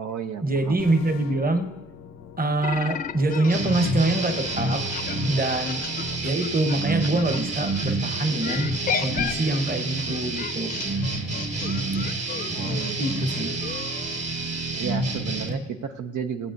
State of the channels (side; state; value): both; normal; correlation 0.56